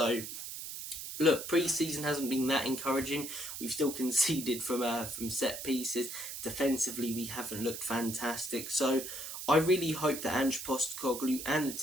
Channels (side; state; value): right; noise; hiss, 8 dB below the sound